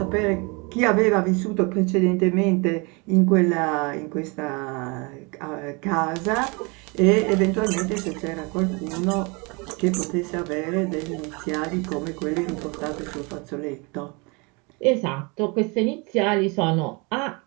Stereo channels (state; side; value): quieter; left; 29.6 dB